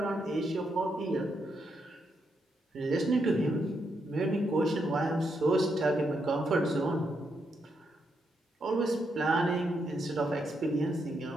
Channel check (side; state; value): both; normal; correlation 0.80